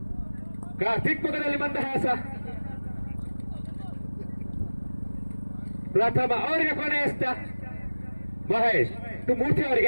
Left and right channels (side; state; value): both; inverted; correlation -1.00